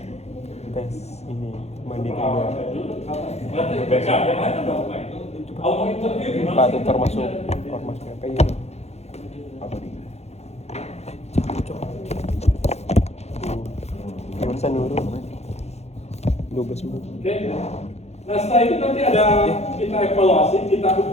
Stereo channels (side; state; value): right; late; 0.31 ms